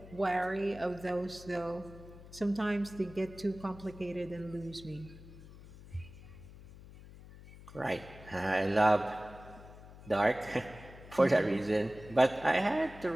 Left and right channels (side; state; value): left; noise; hum, 18 dB below the sound